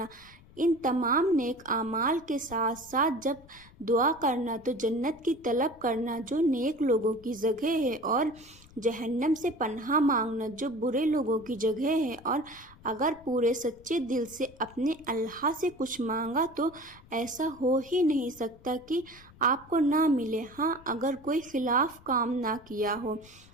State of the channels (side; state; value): left; noise; rumble, 24 dB below the sound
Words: ان تمام نیک اعمال کے ساتھ ساتھ جب دعا کرنا تو جنت کی طلب کرنا جو نیک لوگوں کی جگہ ہے، اور جہنم سے پناہ مانگنا جو برے لوگوں کی جگہ ہے۔ اور اگر پورے سچے دل سے اپنے اللہ سے کچھ مانگا تو ایسا ہو ہی نہیں سکتا کہ آپ کو نہ ملے، ہاں اگر کوئی خلاف کام نہ کیا ہو۔